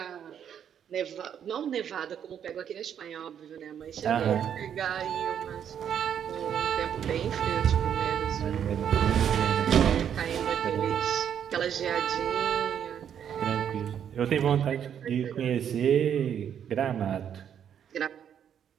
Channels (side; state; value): left; quieter; 8.9 dB